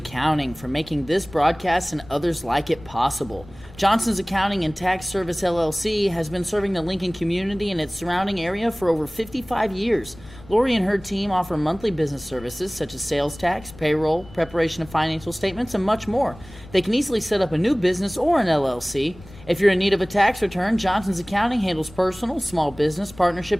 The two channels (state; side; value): noise; left; rumble, 20 dB below the sound